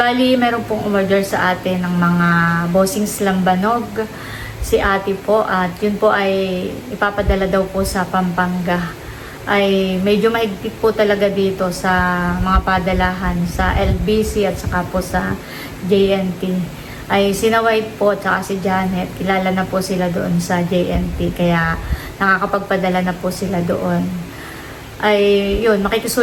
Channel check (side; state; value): both; identical; correlation 1.00